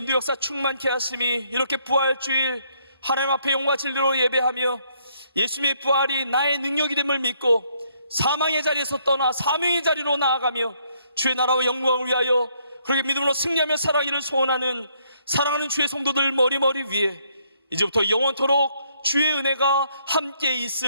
역사 충만케 하심이 이렇게 부활주일 하나님 앞에 영과 진리로 예배하며 예수님의 부활이 나의 능력이 됨을 믿고 사망의 자리에서 떠나 사명의 자리로 나아가며 주의 나라와 영광을 위하여 그렇게 믿음으로 승리하며 살아가기를 소원하는 사랑하는 주의 성도들 머리머리 위에 이제부터 영원토록 주의 은혜가 함께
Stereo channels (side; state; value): both; inverted; correlation -0.70